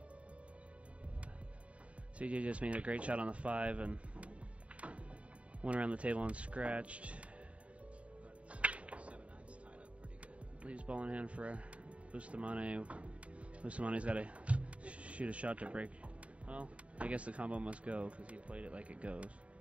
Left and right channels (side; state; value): left; late; 0.064 ms